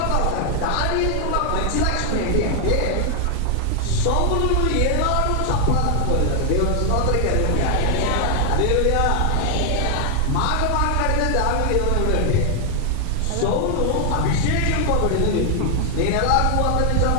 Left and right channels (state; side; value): different; both; correlation 0.00